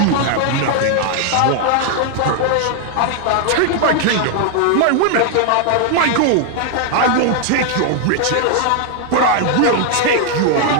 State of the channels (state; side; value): different; both; correlation 0.00